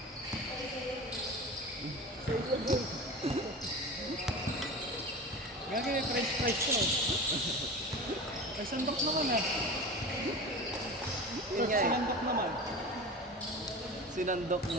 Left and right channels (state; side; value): normal; both; correlation 0.31